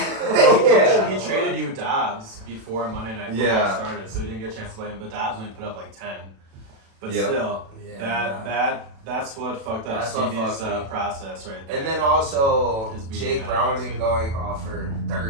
He traded you Dobbs before Monday Night Football Yeah. started, so he didn't get a chance to play him. But Dobbs only put up like 10. But Yep. still, Yeah. that's what fucked up That's what Stevie's fucked me. process right there. And then also His beating Jake out Browning too. going off for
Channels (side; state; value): left; late; 36 ms